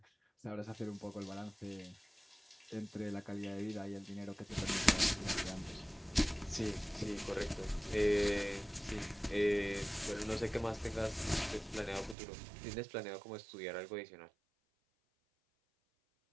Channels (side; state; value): left; drops out; at 12.2 s